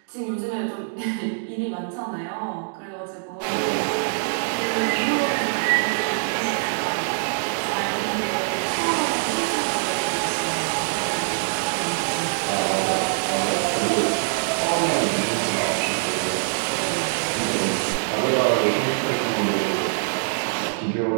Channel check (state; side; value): silent; left; digital silence